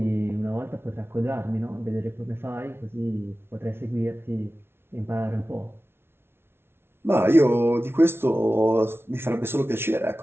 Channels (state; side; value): late; left; 0.12 ms